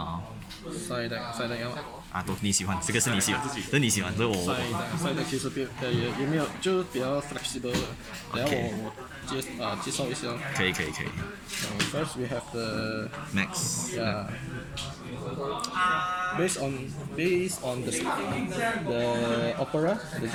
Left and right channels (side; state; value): both; identical; correlation 1.00